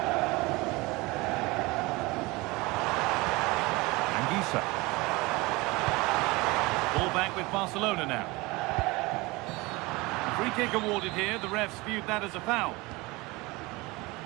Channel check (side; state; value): left; quieter; 23.2 dB